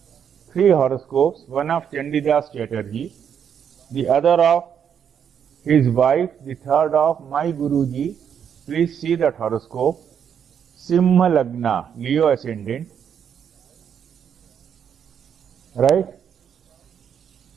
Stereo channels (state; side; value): quieter; left; 8.1 dB